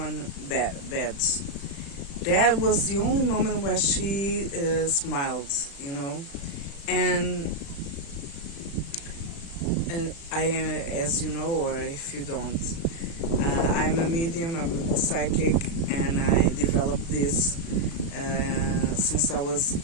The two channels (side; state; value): right; late; 36 ms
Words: bad. That was the only moment where she smiled, And I, as you know, or if you don't, I'm a medium, I'm a psychic, and I developed this since I was